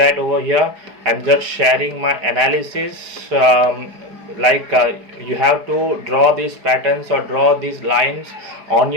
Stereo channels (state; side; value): late; left; 4.8 ms